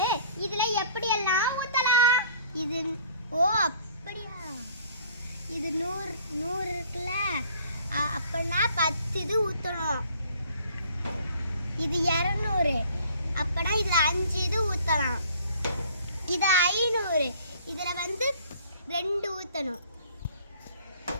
இதுல எப்படி எல்லாம் ஊத்தலாம்? இது ஓ அப்படியா, இது 100 இருக்குல்ல, அப்பனா 10 இது ஊத்தணும். இது 200, அப்பனா இதுல 5 இது ஊத்தலாம். இது 500, இதுல வந்து 2 ஊத்தணும்.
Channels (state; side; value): inverted; both; correlation -0.54